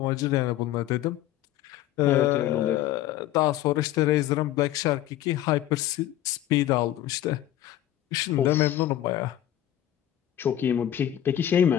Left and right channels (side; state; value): right; quieter; 12.7 dB